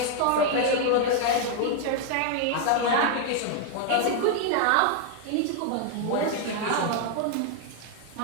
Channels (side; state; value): both; different; correlation 0.00